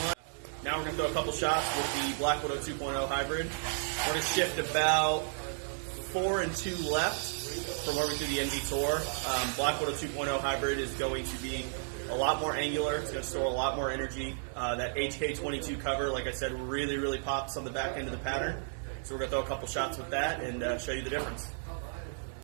one. Now we're going to throw a couple shots with the Black Widow 2.0 hybrid. We're going to shift about 4 and 2 left from where we do the NV Tour. Black Widow 2.0 hybrid is going to be a lot more angular. It's going to store a lot more energy. That HK22 cover, like I said, really, really pops on the back end of the pattern. So we're going to throw a couple shots with that and show you the difference.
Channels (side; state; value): left; silent; digital silence